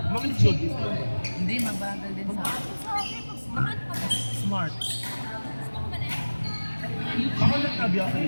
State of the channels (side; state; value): both; inverted; correlation -1.00